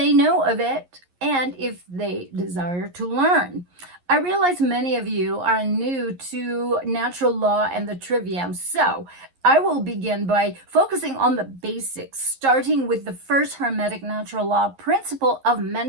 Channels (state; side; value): late; left; 11 ms